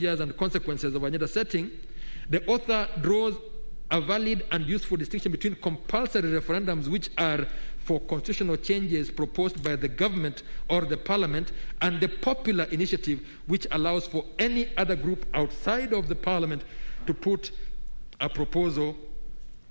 and Consequences of Agenda Setting, the author draws a valid and useful distinction between compulsory referendums, which are for constitutional changes proposed by the government or the parliament, and the popular initiative, which allows for any other group outside of the parliament to put a proposal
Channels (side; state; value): both; inverted; correlation -1.00